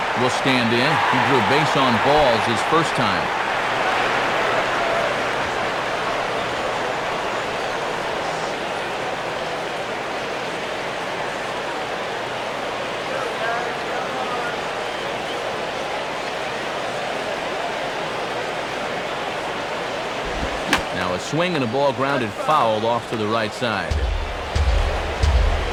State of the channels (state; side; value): identical; both; correlation 1.00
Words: will stand in. He drew base on balls his first time. Now a swing and a ball grounded foul off to the right side.